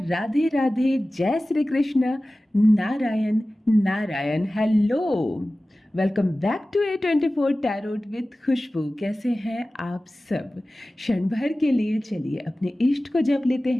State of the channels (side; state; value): both; normal; correlation 0.96